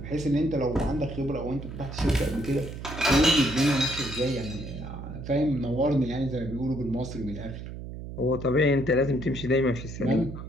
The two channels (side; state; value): right; noise; hum, 10 dB below the sound